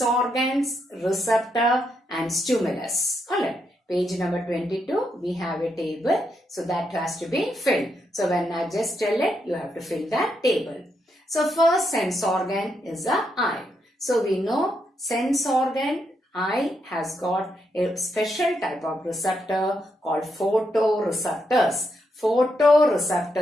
organs, receptor and stimulus. Alright. Page number 22, we have a table. So that has to be filled. So when I just tell it, you have to fill that table. So first sense organ is the eye. So we know sense organ, eye has got a special type of receptor called photoreceptors.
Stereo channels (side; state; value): both; normal; correlation 0.80